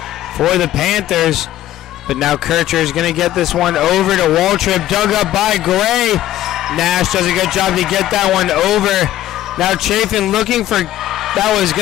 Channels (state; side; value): quieter; right; 13.5 dB